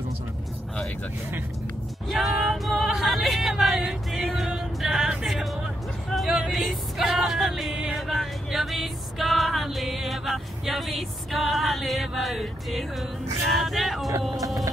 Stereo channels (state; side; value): normal; both; correlation 0.80